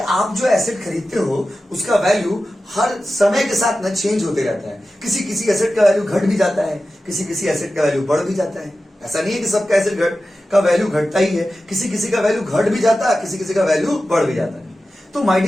जो एसेट खरीदते हो उसका वैल्यू हर समय के साथ ना चेंज होते रहता है। किसी किसी एसेट का वैल्यू घट भी जाता है, किसी किसी एसेट का वैल्यू बढ़ भी जाता है। ऐसा नहीं है कि सबका एसेट का वैल्यू घटता ही है, किसी किसी का वैल्यू घट भी जाता है, किसी किसी का वैल्यू बढ़ भी जाता है। तो माय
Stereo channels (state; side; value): normal; both; correlation 0.94